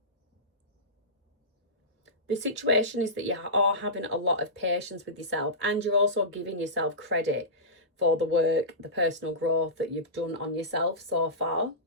The situation is that you are having a lot of patience with yourself, and you're also giving yourself credit for the work, the personal growth that you've done on yourself so far.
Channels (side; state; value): both; normal; correlation -0.18